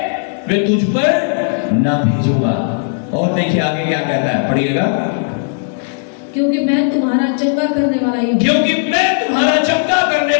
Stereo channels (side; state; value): right; silent; digital silence